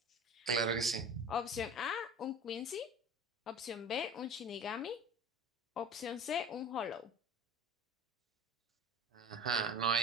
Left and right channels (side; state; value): both; normal; correlation 0.37